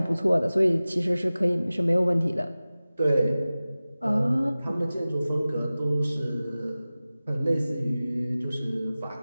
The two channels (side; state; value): both; inverted; correlation -0.97